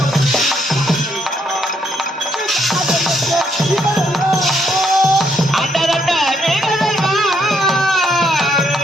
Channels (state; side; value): normal; both; correlation 0.73